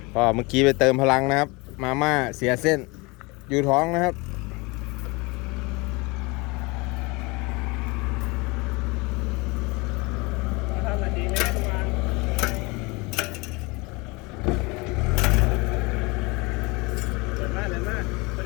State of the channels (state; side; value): quieter; right; 26.1 dB